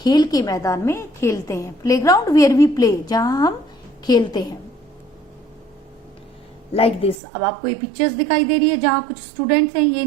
के मैदान में खेलते हैं। Play ground where we play, जहां हम खेलते हैं। लाइक दिस, अब आपको ये पिक्चर्स दिखाई दे रही है जहां कुछ स्टूडेंट्स हैं, ये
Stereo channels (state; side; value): drops out; left; at 7.2 s